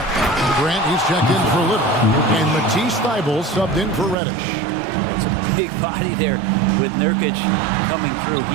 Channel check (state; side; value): drops out; left; at 4.2 s